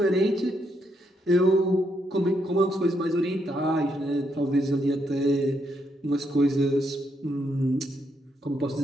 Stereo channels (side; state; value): both; normal; correlation 0.77